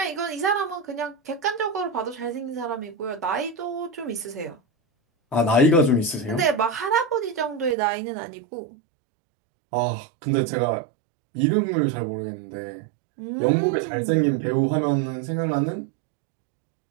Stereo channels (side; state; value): left; drops out; at 7.8 s